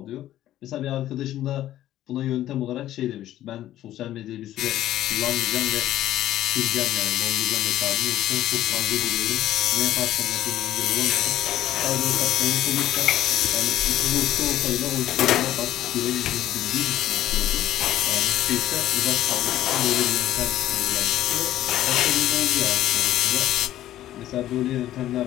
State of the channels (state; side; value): quieter; right; 13.3 dB